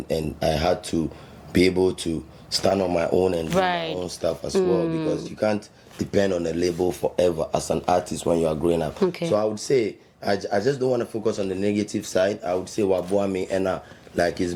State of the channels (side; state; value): both; identical; correlation 1.00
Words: I had to be able to stand on my own and do my own stuff as well, because you can't depend on a label forever as an artist when you are growing up. Okay. So I would say I just don't want to focus on the negative side. I would say wabuame, and like it's